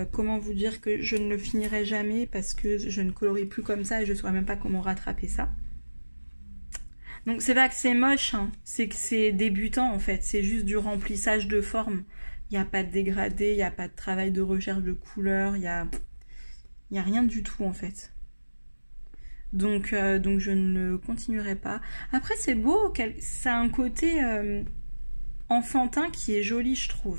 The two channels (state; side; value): inverted; both; correlation -1.00